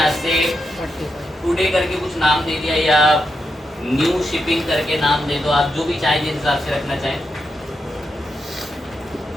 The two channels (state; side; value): normal; both; correlation 0.84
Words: से टुडे करके कुछ नाम दे दिया, या न्यू शिपिंग करके नाम दे दो, आप जो भी चाहें, जिस हिसाब से रखना चाहें।